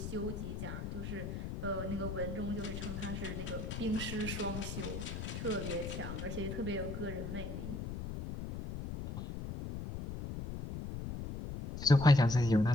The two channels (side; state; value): left; noise; rumble, 6 dB below the sound